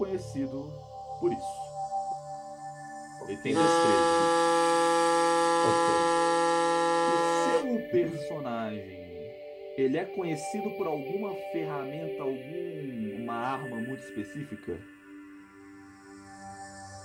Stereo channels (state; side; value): identical; both; correlation 1.00